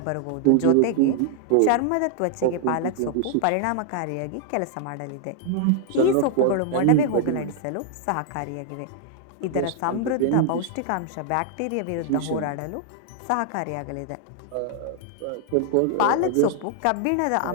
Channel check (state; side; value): different; both; correlation 0.00